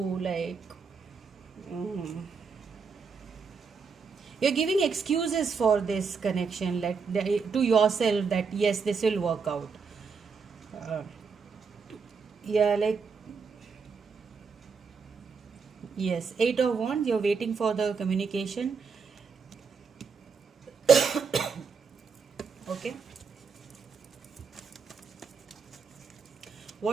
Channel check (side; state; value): left; quieter; 5.4 dB